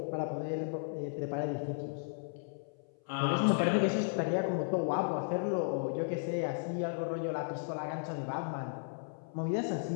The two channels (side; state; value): right; silent; 55 dB below the other